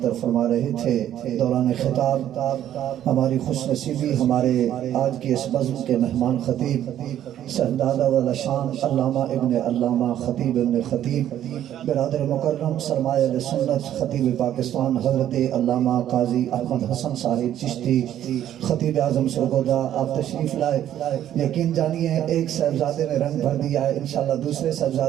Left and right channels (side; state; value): left; quieter; 11.3 dB